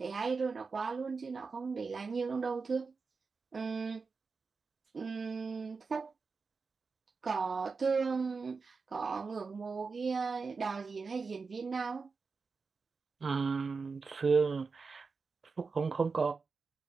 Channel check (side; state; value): left; quieter; 4.7 dB